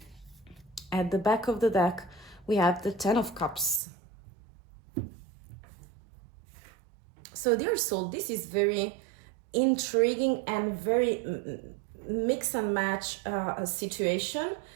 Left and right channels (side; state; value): left; drops out; at 3.8 s